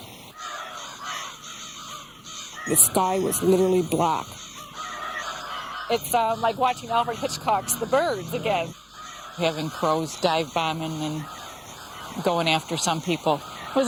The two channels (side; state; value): both; identical; correlation 1.00